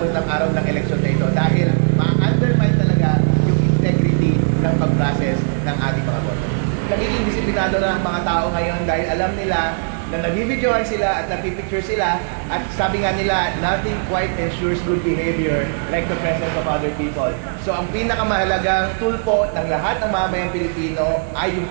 ng araw ng eleksyon na ito dahil ma-undermine talaga yung integrity ng pag-process ng ating mga boto. Nagiging disiplinado na ang mga tao ngayon dahil alam nila na nabibidyohan sila at napipicture sila at sabi nga nila, nothing quite ensures good behavior like the presence of other people. So ang pinakamahalagang tool po ng lahat ng mamamayang Pilipino ay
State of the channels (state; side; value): silent; left; digital silence